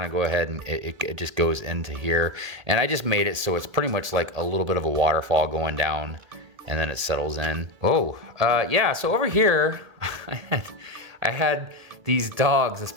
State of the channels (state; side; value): late; left; 1.8 ms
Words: of go ahead and it just goes into here. And I just made it so it's pretty much like a little bit of a waterfall going down, and then it settles in. Oh, yeah, so over here, I had these dogs, this